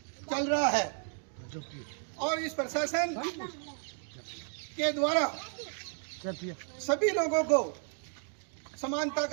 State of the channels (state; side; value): silent; left; 55 dB below the other